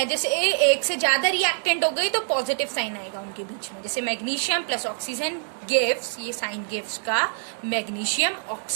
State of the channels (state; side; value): silent; left; digital silence